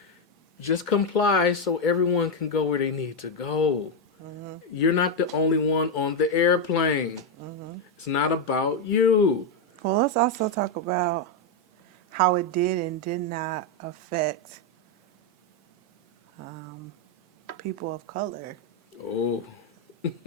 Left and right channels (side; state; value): both; normal; correlation 0.04